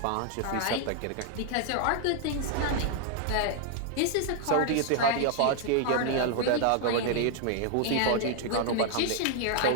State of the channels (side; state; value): both; different; correlation 0.00